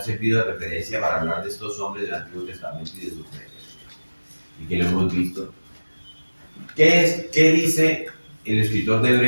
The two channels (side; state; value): both; inverted; correlation -1.00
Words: servido de referencia para hablar de estos hombres del Antiguo Testamento y de su fe. Y que lo hemos visto. ¿Qué dice el escritor de